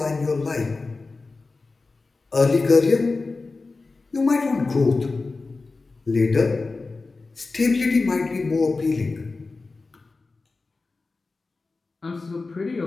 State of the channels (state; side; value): quieter; right; 3.8 dB